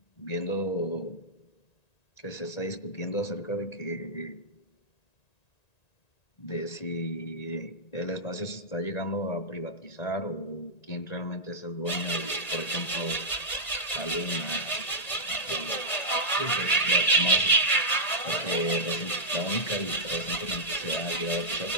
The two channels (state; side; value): late; right; 1.9 ms